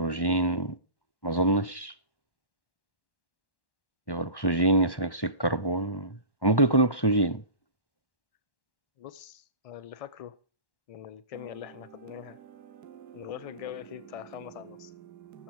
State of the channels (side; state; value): right; late; 1.1 ms